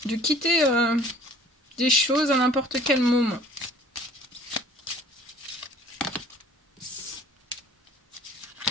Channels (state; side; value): normal; both; correlation 0.51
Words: De quitter des choses à n'importe quel moment.